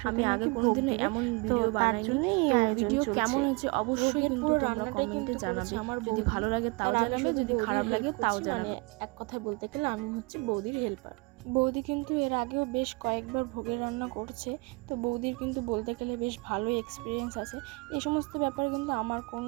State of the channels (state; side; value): quieter; left; 27.5 dB